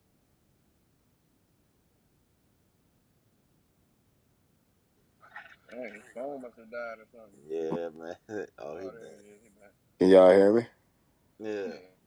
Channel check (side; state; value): both; identical; correlation 1.00